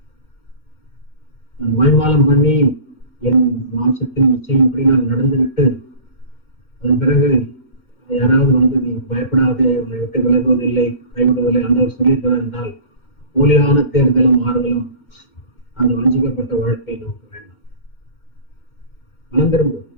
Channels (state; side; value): late; right; 2.1 ms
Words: நான் மாய்மாலம் பண்ணி என் மாம்சத்தின் நிச்சயம்படி நான் நடந்துவிட்டு அதன் பிறகு யாராவது வந்து நீ பயப்படாதே, உன்னை விட்டு விலகுவதில்லை, கைவிடுவதில்லை ஆண்டவர் சொல்லியிருக்கிறார் என்றால் போலியான தேர்தலும் ஆறுதலும் அந்த வஞ்சிக்கப்பட்ட வாழ்க்கை நமக்கு வேண்டாம்.